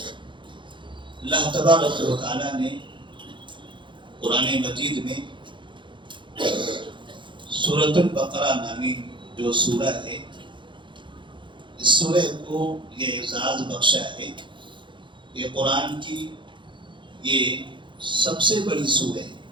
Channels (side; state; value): left; late; 0.23 ms